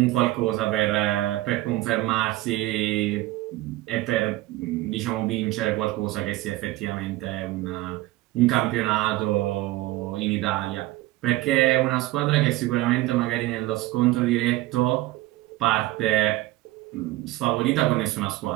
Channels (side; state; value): left; quieter; 17.6 dB